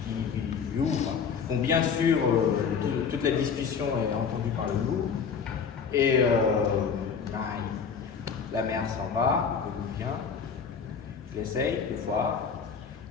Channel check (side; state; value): right; quieter; 6.4 dB